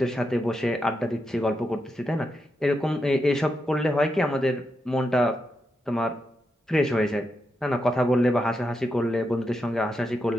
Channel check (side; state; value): both; normal; correlation 0.85